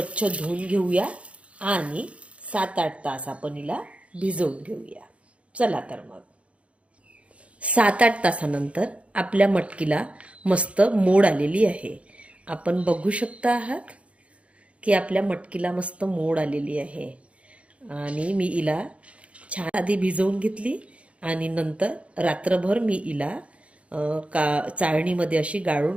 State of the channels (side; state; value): left; late; 0.062 ms